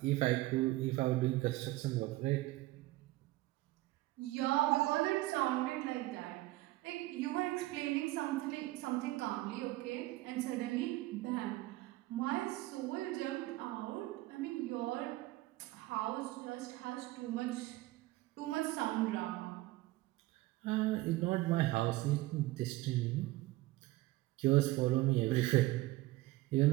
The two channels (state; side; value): quieter; left; 18.5 dB